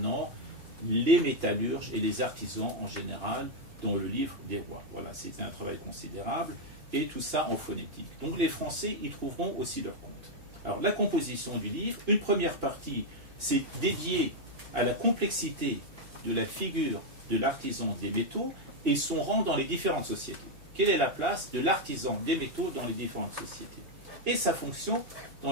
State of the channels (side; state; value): left; late; 2.9 ms